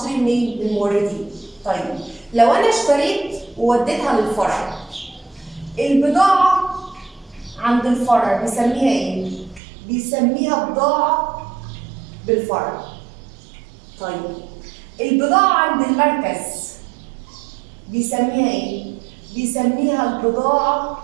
منين؟ من الموردين. طيب لو انا اشتريت ووديتها للفرع، البضاعه عند الفرع بيسميها ايه؟ بيسميها بضاعه بالفرع. طيب البضاعه عند المركز بيسميها ايه؟ بيسميها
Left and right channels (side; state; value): left; drops out; at 9.6 s